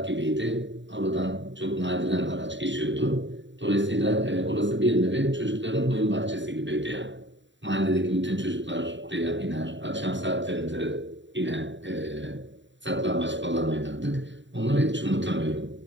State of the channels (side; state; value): left; late; 0.54 ms